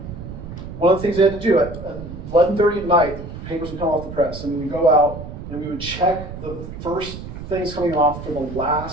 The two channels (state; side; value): noise; right; rumble, 11 dB below the sound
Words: one of the things they had to do at 11:30 at night, the papers would come off the press, and we would go out and we would check the first things coming off for the